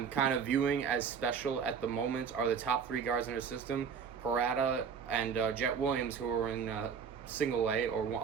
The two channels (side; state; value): left; quieter; 6.6 dB